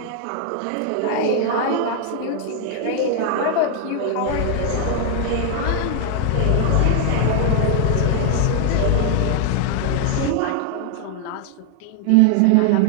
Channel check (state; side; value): different; both; correlation 0.00